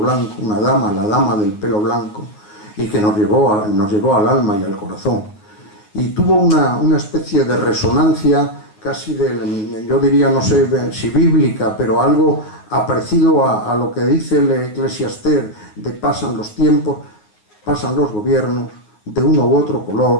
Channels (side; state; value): right; late; 9.6 ms